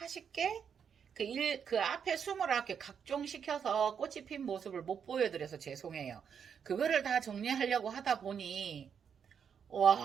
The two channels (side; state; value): left; quieter; 7.3 dB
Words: 그 앞에 29개 각종시켜서 꽃이 핀 모습을 못 보여드려서 죄송해요. 그거를 다 정리하려고 하다 보니